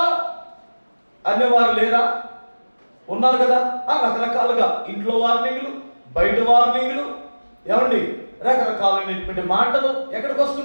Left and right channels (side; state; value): both; inverted; correlation -1.00